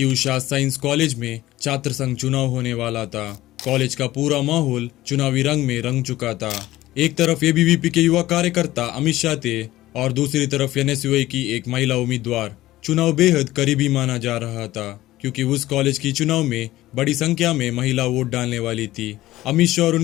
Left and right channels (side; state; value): right; quieter; 16.2 dB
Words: Usha science college में छात्र संघ चुनाव होने वाला था। कॉलेज का पूरा माहौल चुनावी रंग में रंग चुका था। एक तरफ एबीवीपी के युवा कार्यकर्ता अमित शाह थे और दूसरी तरफ एनएसयूआई की एक महिला उम्मीदवार। चुनाव बेहद करीबी माना जा रहा था क्योंकि उस कॉलेज की चुनाव में बड़ी संख्या में महिला वोट डालने वाली थी। अमित शाह और